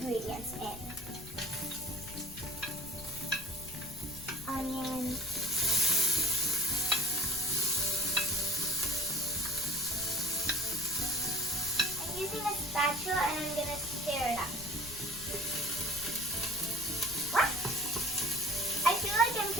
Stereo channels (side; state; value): left; noise; rumble, 14 dB below the sound